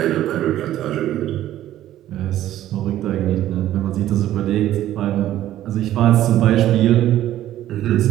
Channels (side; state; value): left; quieter; 13.1 dB